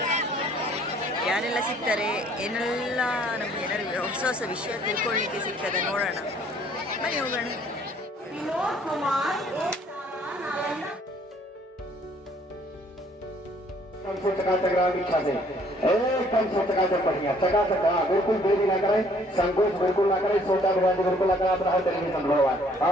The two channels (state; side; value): normal; both; correlation 0.60